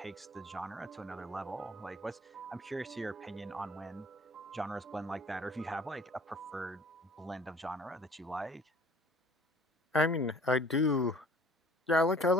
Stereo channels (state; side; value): normal; both; correlation 0.52